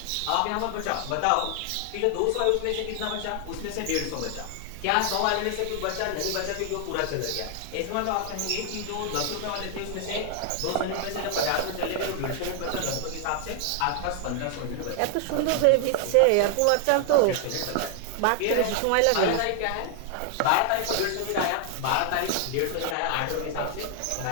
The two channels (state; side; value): different; both; correlation 0.00